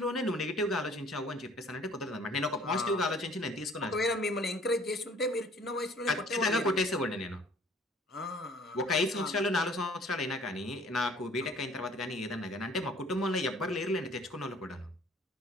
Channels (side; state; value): both; normal; correlation 0.54